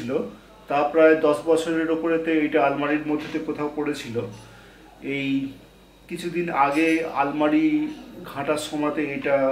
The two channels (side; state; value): both; identical; correlation 1.00